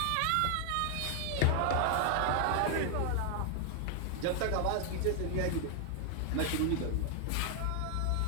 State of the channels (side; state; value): both; different; correlation 0.00